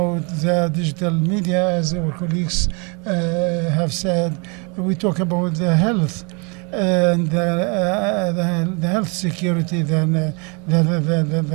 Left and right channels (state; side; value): quieter; left; 32.9 dB